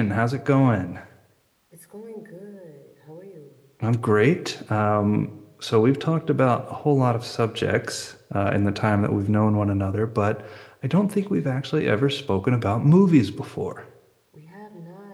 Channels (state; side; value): identical; both; correlation 1.00